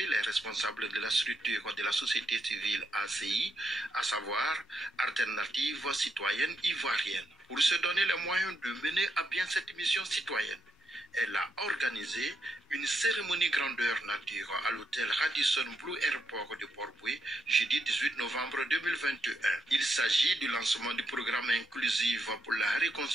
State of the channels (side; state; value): both; normal; correlation 0.80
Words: les responsables de la structure de la société civile ACI, à savoir Alternative Citoyenne Ivoirienne. Pour se donner les moyens de mener à bien cette mission citoyenne, elle a organisé une cérémonie grandeur nature à l'hôtel Radisson Blu Airport de Port-Bouët, jeudi 18 novembre 2021. Il s'agit du lancement du programme inclusif pour la